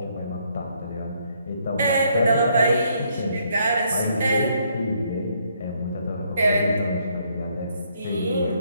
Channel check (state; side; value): inverted; both; correlation -0.70